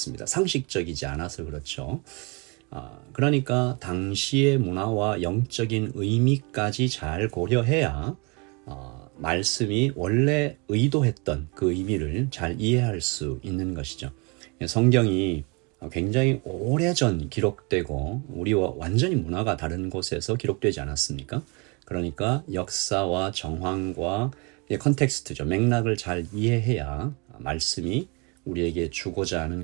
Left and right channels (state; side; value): quieter; left; 30.6 dB